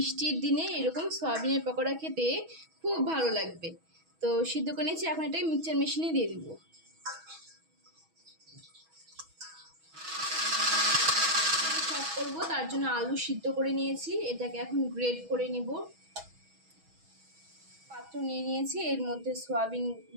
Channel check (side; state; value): left; late; 6.2 ms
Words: দিনে এরকম সোয়াবিনের পকোড়া খেতে খুব ভালো লাগবে। তো সিদ্ধ করে নিয়েছি, এখন এটাকে মিক্সচার মেশিনে দিয়ে দিব। চপ করবো, তার জন্য আলু সিদ্ধ করে নিয়েছি। এটাকে এখন গ্রেড করে নিব। পাত্র নিয়ে নিয়েছি, এর মধ্যে সোয়াবিন